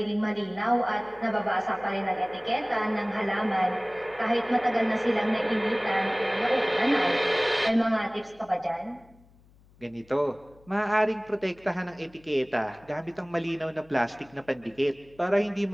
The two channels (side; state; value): left; noise; hum, 28 dB below the sound